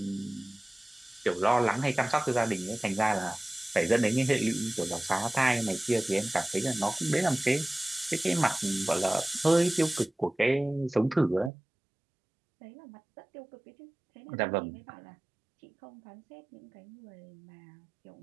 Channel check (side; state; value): left; drops out; at 11.5 s